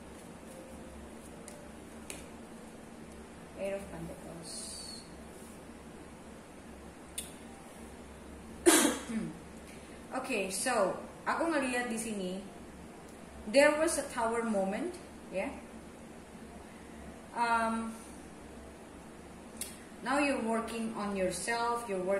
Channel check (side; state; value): both; identical; correlation 1.00